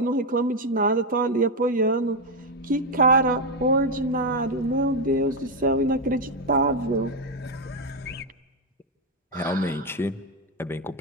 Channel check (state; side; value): normal; both; correlation 0.05